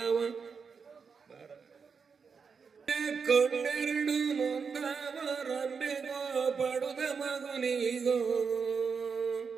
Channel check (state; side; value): quieter; left; 5.7 dB